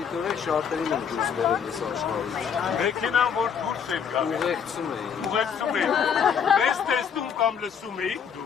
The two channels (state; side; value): quieter; right; 7.3 dB